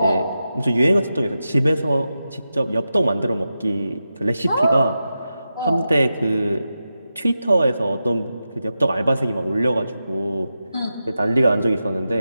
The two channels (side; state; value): both; inverted; correlation -0.90